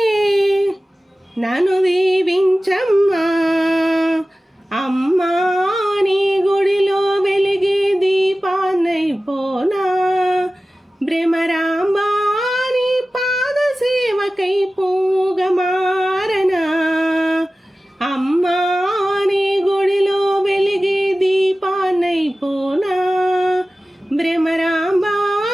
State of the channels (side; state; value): both; normal; correlation 0.96